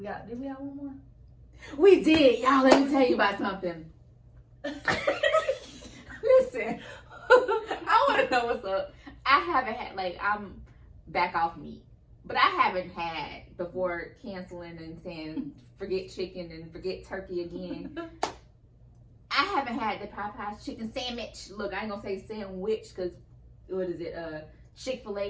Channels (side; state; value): both; identical; correlation 1.00